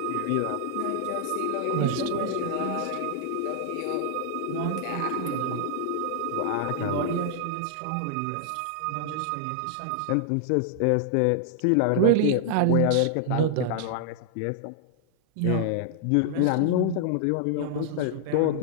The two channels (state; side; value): different; both; correlation -0.01